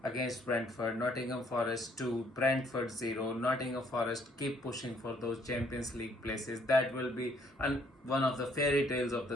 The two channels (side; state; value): both; normal; correlation 0.65